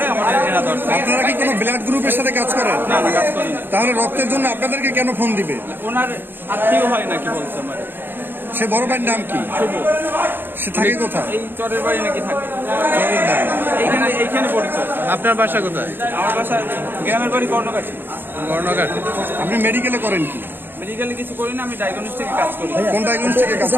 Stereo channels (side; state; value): left; late; 0.097 ms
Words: আমাদের এরা ধরছে। আপনারা কি কোনো ব্লাড গ্রুপের সাথে কাজ করেন? না না, কাজ করি না। তাহলে রক্তের জন্য আপনাদেরকে কেন ফোন দিবে? ওনার আত্মীয় হয় নাকি বলছে আমার। সে বড় ভাইয়ের নাম কি? শুভ। সে থাকে কোথায়? এই চরের বাড়ি নাকি থাকে, চরের বাড়ি। এইখানে পরিচয়। আপনার বাসা কোথায়? আমার বাসা গ্রামের বাড়ি কর্ণঘাট। কর্ণঘাট। আপনি মেডিকেলে করেন কি? মেডিকেলে কিছু করি না, আমি ডায়াগনস্টিকে কাজ করি। কোন ডায়াগনস্টিকে কাজ